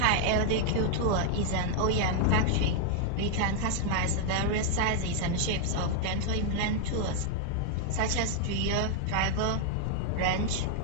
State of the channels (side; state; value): both; different; correlation 0.00